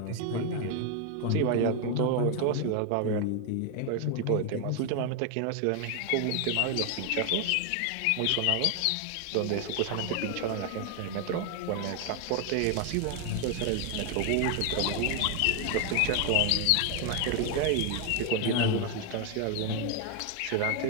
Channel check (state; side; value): different; both; correlation 0.01